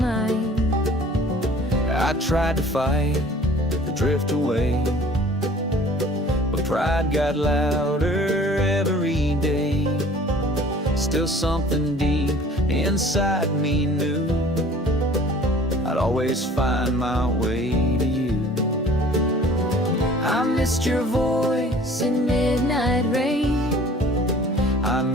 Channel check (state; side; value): normal; both; correlation 0.49